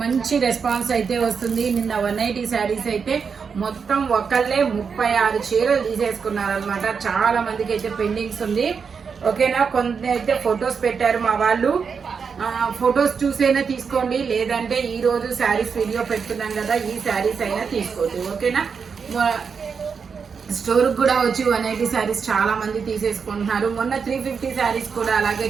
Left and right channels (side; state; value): left; quieter; 5.9 dB